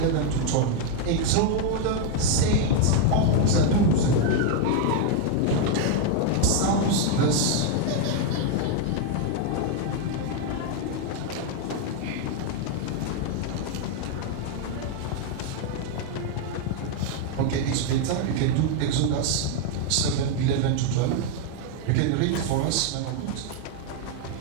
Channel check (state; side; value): different; both; correlation 0.01